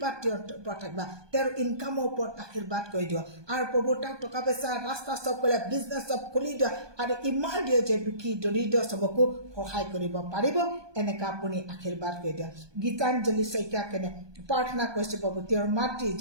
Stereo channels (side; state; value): left; late; 1.2 ms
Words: তেওঁৰ ওপৰত থাকিবা তেওঁৰ ইনকামৰ ওপৰত আশীৰ্বাদ কৰি দিয়ক আৰু প্ৰভু তাৰ টকা পইচা ৰাস্তা চব কৰিলে বিজনেছ চব খুলি দিয়ক আৰু ইমান দিয়ে যে দুখী দৰিদ্ৰ চবকো সহায় কৰিব পাৰিব এনেকা আপুনি আশীৰ্বাদ কৰি দিয়ক গীতাঞ্জলি শইকীয়া কেনে প্ৰাৰ্থনা কৰিছে প্ৰভু তেওঁৰ মাতৃ